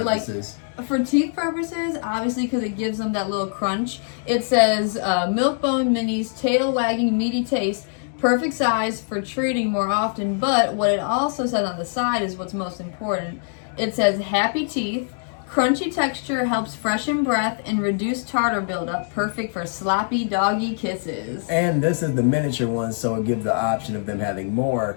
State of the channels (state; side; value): silent; right; 63 dB below the other